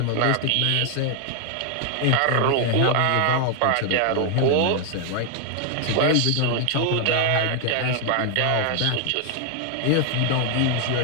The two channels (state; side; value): different; both; correlation 0.00